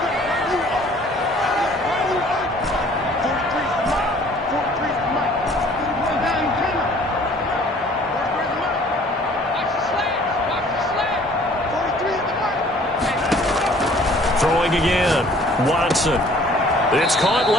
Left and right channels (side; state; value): both; normal; correlation 0.54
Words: Throwing again, Watson. It's caught